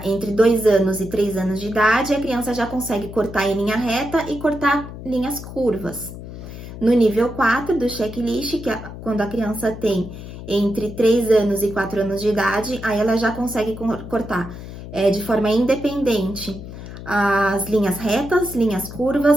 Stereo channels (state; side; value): noise; left; hum, 12 dB below the sound